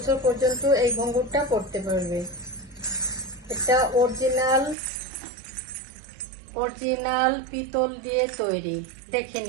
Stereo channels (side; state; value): left; drops out; at 4.8 s